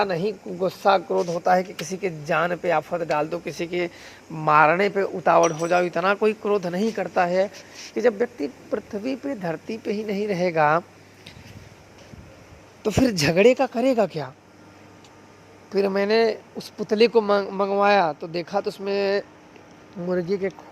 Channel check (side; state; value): both; identical; correlation 1.00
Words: नहीं गुस्सा क्रोध होता है कि किसी के जान पे आफत डाल दो, किसी के मारने पे उतावड़ हो जाओ। इतना कोई क्रोध नहीं करता है कि जब व्यक्ति पृथ्वी पे, धरती पे ही नहीं रहेगा तो फिर झगड़े का करेगा क्या। फिर मैंने उस पुतले को मंगवाया तो देखा तो उसमें मुर्गी के